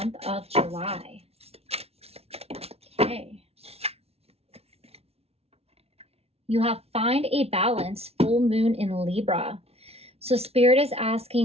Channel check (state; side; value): late; left; 0.30 ms